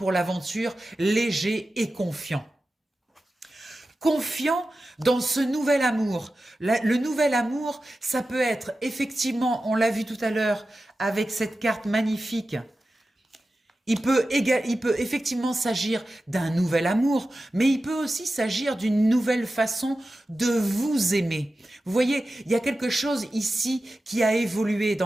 l'aventure léger et confiant. Confiant dans ce nouvel amour. Le nouvel amour, ça peut être effectivement, on l'a vu tout à l'heure avec cette carte magnifique, il peut effectivement s'agir d'un nouvel amour, mais il peut aussi s'agir d'une nouvelle façon de vous aimer. Vous voyez, il y a quelque chose ici qui a évolué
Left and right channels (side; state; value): both; normal; correlation 0.93